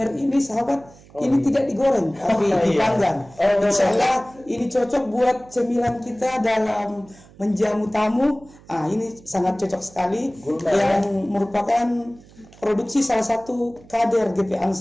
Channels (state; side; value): noise; right; hum, 24 dB below the sound